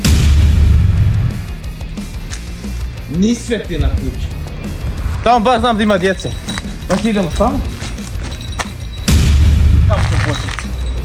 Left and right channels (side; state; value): both; identical; correlation 1.00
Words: Ni sveti na kući. Tamo baš znam da ima djece. Baš idemo tamo. Tamo ćemo početi.